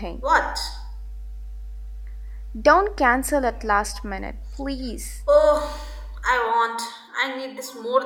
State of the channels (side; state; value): both; identical; correlation 1.00